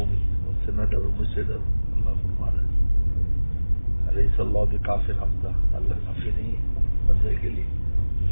ان سے نہ ڈرو مجھ سے ڈرو، اللہ فرما رہا ہے علیہ اللہ بکافٍ عبدہ، اللہ کافی نہیں ہے بندے کے لیے۔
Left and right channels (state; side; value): inverted; both; correlation -1.00